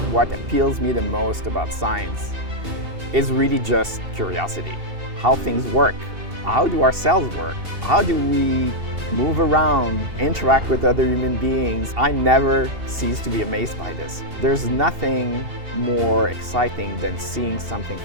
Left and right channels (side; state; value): left; late; 2.7 ms